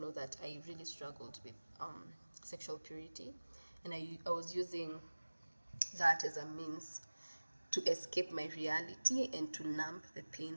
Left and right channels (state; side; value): inverted; both; correlation -1.00